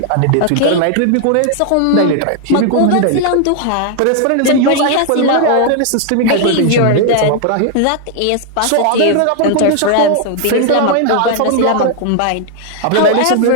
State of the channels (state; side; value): different; both; correlation 0.00